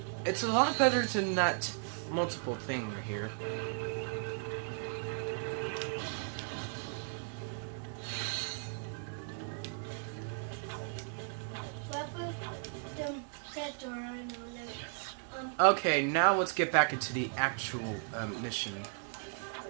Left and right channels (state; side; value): silent; left; 54 dB below the other